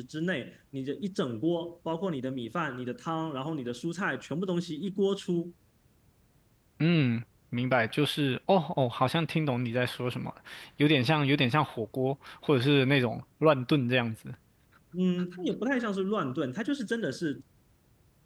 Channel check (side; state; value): both; identical; correlation 1.00